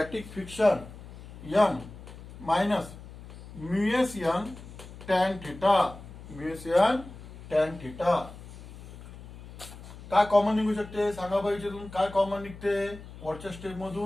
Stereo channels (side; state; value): left; noise; hum, 16 dB below the sound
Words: friction N minus mu S N tan theta, mu S N tan theta. काय common निघू शकते सांगा बाई, याच्यातून काय कॉमन निघते, वरच्या स्टेप